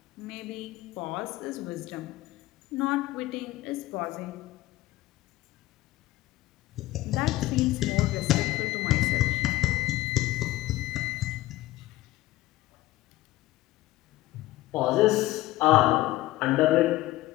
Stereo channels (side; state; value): right; quieter; 17.0 dB